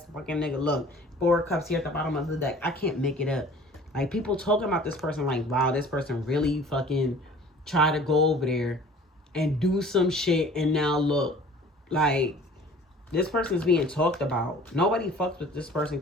fucking nigga. Look, 4 of Cups here at the bottom of the deck. I can't make it up. Like, people talking about this person like, wow, this person really fucking tried to go over there and do some shit, and now look, like, this person's being talked about. Nobody fucks with this person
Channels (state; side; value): normal; both; correlation 0.48